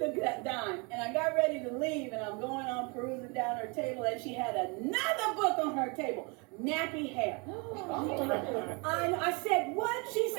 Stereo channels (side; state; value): left; quieter; 31.0 dB